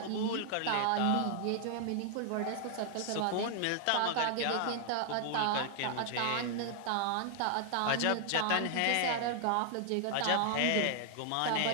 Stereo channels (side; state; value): both; different; correlation 0.00